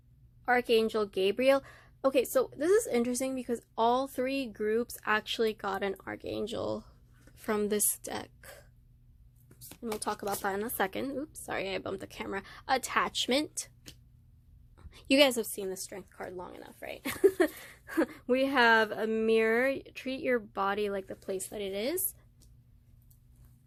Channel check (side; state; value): both; identical; correlation 1.00